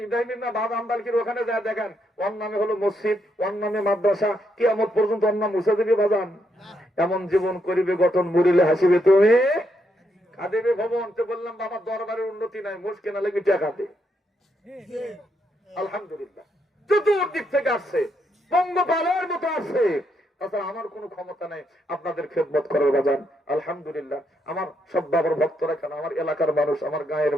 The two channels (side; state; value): both; normal; correlation 0.78